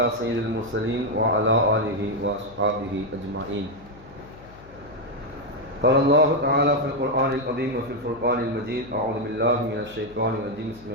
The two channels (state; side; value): noise; left; hum, 21 dB below the sound